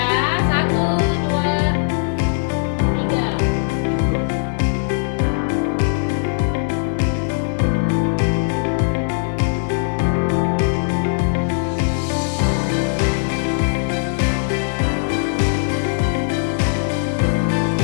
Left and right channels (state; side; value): silent; right; digital silence